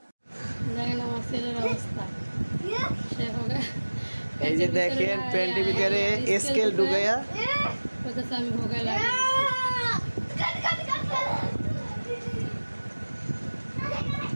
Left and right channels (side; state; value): both; inverted; correlation -1.00